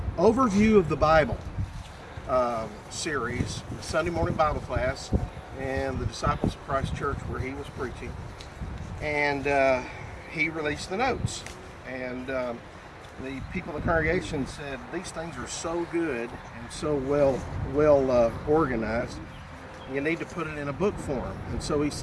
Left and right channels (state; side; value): identical; both; correlation 1.00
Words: of the Bible series, a Sunday morning Bible class, and the Disciples of Christ Church where he was preaching, and he released the notes, and the people in the congregation said these things are so good and so well organized, you need to put it in a book form. And so he